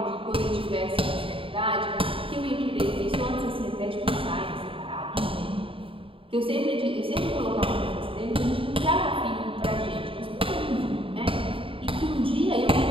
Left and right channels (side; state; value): left; late; 0.26 ms